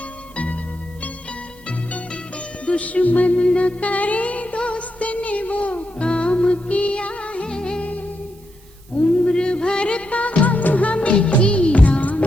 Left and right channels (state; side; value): noise; right; hiss, 29 dB below the sound